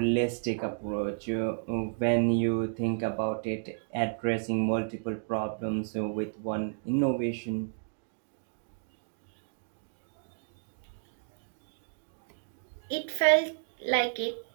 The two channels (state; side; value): silent; left; digital silence